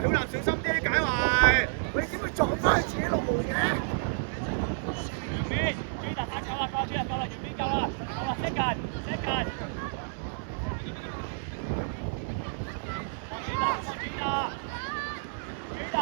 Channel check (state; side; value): silent; left; 58 dB below the other